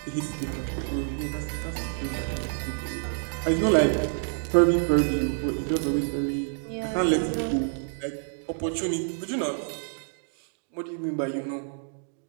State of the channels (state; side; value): silent; left; digital silence